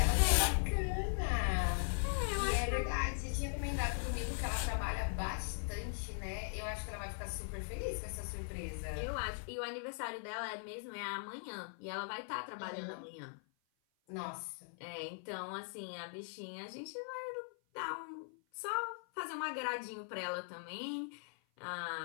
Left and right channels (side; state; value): right; silent; 51 dB below the other